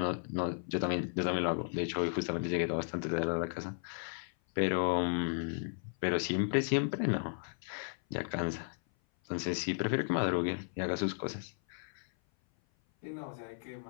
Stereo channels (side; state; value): right; silent; 55 dB below the other